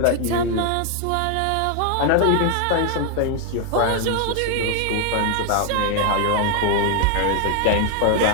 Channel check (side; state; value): both; different; correlation 0.00